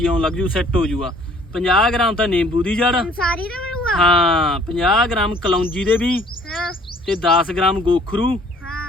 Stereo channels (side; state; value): both; normal; correlation 0.56